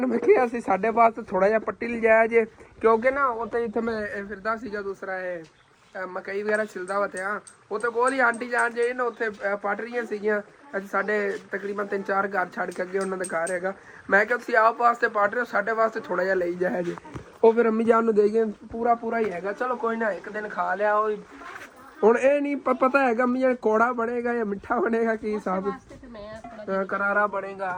ਮੈਂ ਕਿਹਾ ਸੀ ਸਾਡੇ ਵਾਸਤੇ ਥੋੜਾ ਜਿਹਾ ਪੱਟੀ ਲਿਜਾਇਆ ਜੇ ਕਿਉਂਕਿ ਨਾ ਉੱਥੇ ਜਿੱਥੇ ਮੈਂ ਫਿਰਦਾ ਸੀਗਾ ਦੂਸਰਾ ਇਹ ਮਕਈ ਵਗੈਰਾ ਛਿਲਦਾ ਵਾ ਤੇ ਉੱਥੇ ਕੋਲ ਹੀ ਆਂਟੀ ਜਾਨ ਜਿਹੜੀ ਨਾ ਉੱਥੇ ਪੱਟ ਰਹੀਆਂ ਸੀਗੀਆਂ। ਅੱਜ ਸਾਡੇ ਤਕਰੀਬਨ 3-4 ਘਰ ਛੱਡ ਕੇ ਅੱਗੇ ਉਹਨਾਂ ਦਾ ਘਰ ਹੈਗਾ। ਮੈਂ ਕਿਹਾ ਤੁਸੀਂ ਆਪ ਵਾਸਤੇ ਪੱਟ ਰਹੇ ਹੋ ਸਾਡੇ ਵਾਸਤੇ ਥੋੜਾ ਜਿਹਾ ਲਈ ਜਾਇਆ ਜੇ। ਉਹ ਫਿਰ ਅੰਮੀ ਜਾਨ ਨੂੰ ਦੇ ਗਏ ਪੂਰਾ ਹੀ ਹੈਗਾ। ਚਲੋ ਕੋਈ ਨਾ ਇੱਕ ਦਿਨ ਖਾ ਲਿਆ। ਉਹ ਹੁਣ ਇਹ ਨਹੀਂ ਪਤਾ ਹੈਗਾ ਅੰਮੀ ਜਾਨ ਕੌੜਾ ਬਣੇਗਾ ਜਾਂ ਮਿੱਠਾ ਬਣੇਗਾ ਕੀ ਹਿਸਾਬ ਕਰਾਰਾ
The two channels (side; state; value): both; identical; correlation 1.00